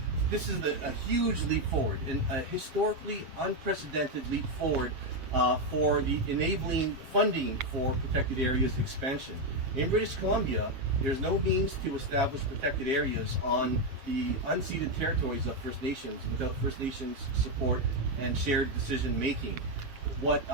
This is a huge leap forward, and a historically unprecedented leap forward for the enabling funding for protected areas expansion. In British Columbia, there's no means to establish protected areas on the unceded territories of First Nations without First Nations support and shared decision making. What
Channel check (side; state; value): left; late; 7.5 ms